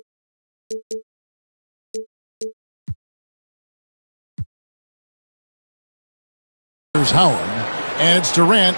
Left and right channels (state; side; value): inverted; both; correlation -1.00